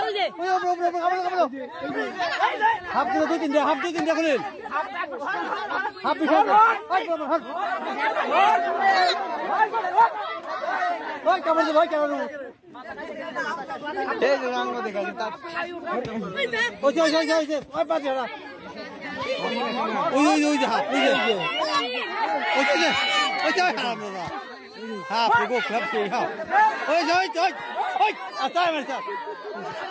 হাপ দিলে দুই তিন দে হাপ দুই তিন দে খুলেন হাপ দিছে ওই কেমন ভাই কেমন এই যে রঙ দেখা তা ওই যে ওই বাজে না ওই যে হাপ ওই যে হাপ না হাপ গো খাপ কে হাপ ওই আতাই মারছা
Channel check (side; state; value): both; identical; correlation 1.00